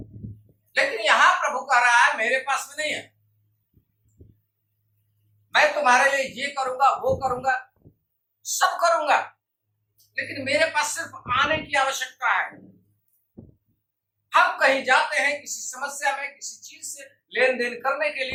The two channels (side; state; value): both; identical; correlation 1.00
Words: लेकिन यहां प्रभु कह रहा है मेरे पास में नहीं है। मैं तुम्हारे लिए ये करूंगा, वो करूंगा, सब करूंगा, लेकिन मेरे पास सिर्फ आने की आवश्यकता है। हम कहीं जाते हैं किसी समस्या में, किसी चीज से लेन देन करने के